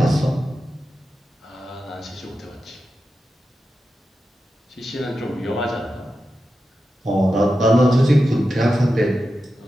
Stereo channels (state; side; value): normal; both; correlation 0.90